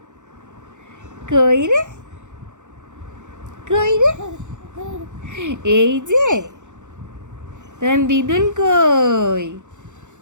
কই রে কই রে, এই যে তোমার দিদুন কই?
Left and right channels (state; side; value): late; left; 0.85 ms